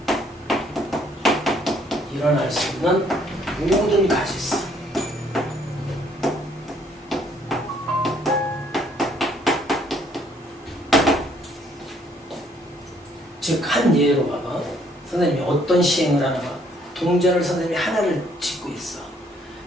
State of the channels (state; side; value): normal; both; correlation 0.65